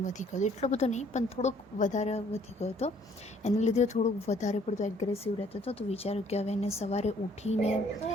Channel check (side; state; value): both; normal; correlation 0.61